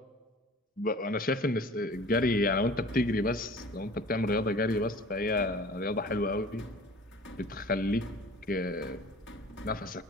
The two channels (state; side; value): normal; both; correlation 0.44